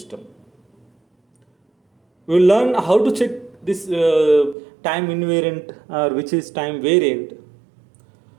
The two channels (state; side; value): drops out; left; at 4.5 s